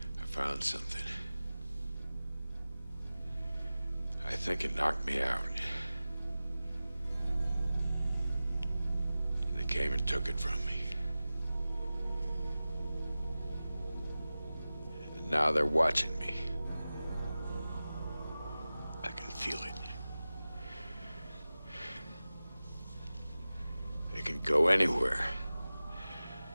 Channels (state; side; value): inverted; both; correlation -0.96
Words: I found something. I think it knocked me out. They came and took it from me. And now they're watching me. I can feel it. They can go anywhere.